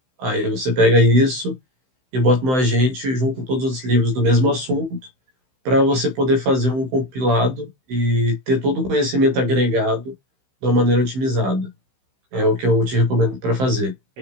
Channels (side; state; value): left; late; 15 ms